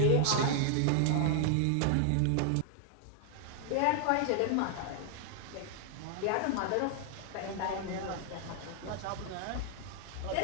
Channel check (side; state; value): both; different; correlation 0.00